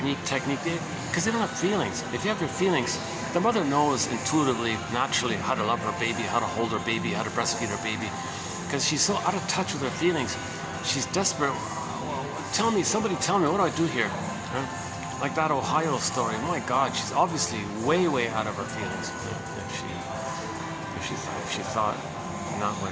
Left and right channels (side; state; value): both; identical; correlation 1.00